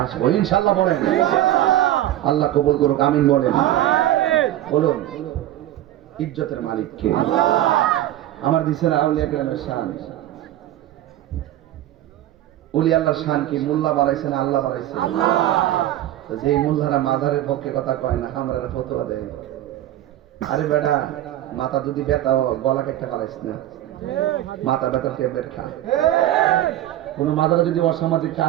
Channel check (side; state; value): left; quieter; 13.6 dB